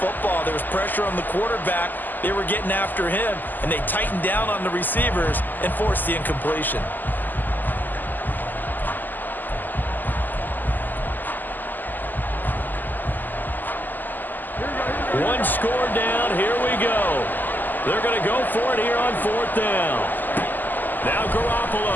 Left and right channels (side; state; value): right; late; 0.087 ms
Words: There was pressure on the quarterback. They were getting after him, and they tightened down on the receivers and forced the incompletion. One score down. Here we go. They're going to go for it here on fourth down. Now